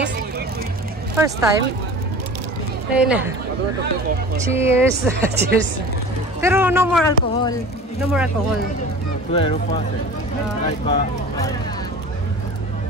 First time? Ayun na. Cheers! Cheers! Pero no more alcohol. No more alcohol. 12%. Like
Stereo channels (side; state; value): both; normal; correlation 0.38